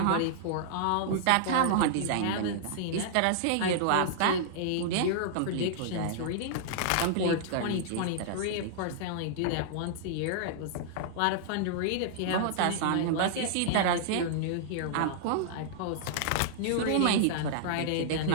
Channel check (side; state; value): both; different; correlation -0.01